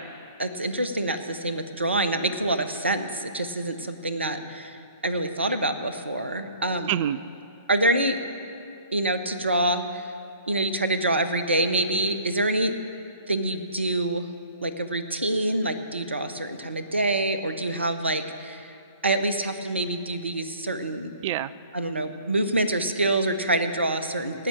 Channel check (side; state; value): both; inverted; correlation -0.52